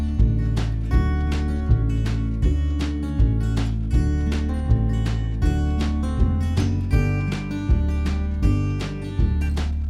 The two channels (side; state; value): both; identical; correlation 1.00